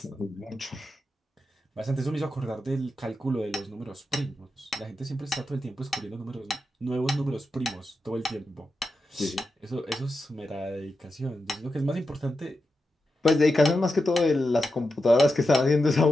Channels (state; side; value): normal; both; correlation 0.89